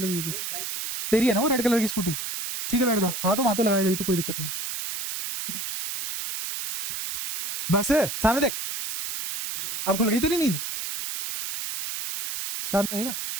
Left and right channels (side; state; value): right; noise; hiss, 5 dB below the sound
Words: हुई थी, तेरी है ना वो रेड कलर की स्कूटी? ठीक है बैठ जा, हाँ तो वहां तो लगाई गई तो कोई दिक्कत नहीं। बस सामने देख, अब खुल गई तेरी नींद, शांत रहेगा।